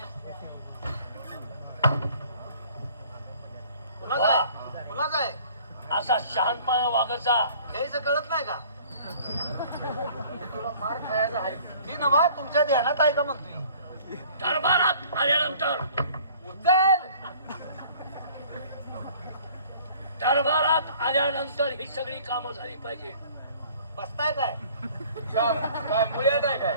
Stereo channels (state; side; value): inverted; both; correlation -0.52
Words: कुणाचं आहे? कुणाचं आहे? असा शहाणपणा वागायचा. काहीच कळत नाही का? तुला मार खायला आहे. ती नवा तुमच्या ध्यानात आहे का म्हणतोय? दरबारात आल्यानंतर उचल. दरबारात आल्यानंतर ही सगळी कामं झाली पाहिजे. बसताय काय? काय मुळ्यात आहे काय?